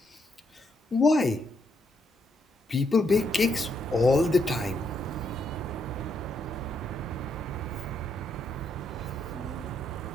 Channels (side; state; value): both; normal; correlation 0.76